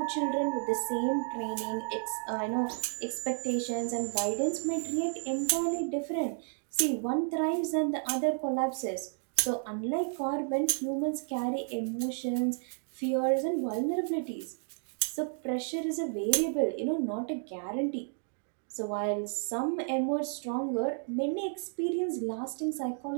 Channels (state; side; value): silent; left; 56 dB below the other